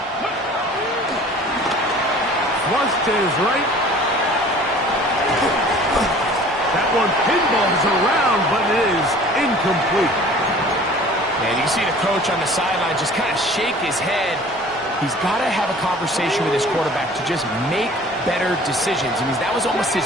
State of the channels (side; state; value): both; normal; correlation 0.47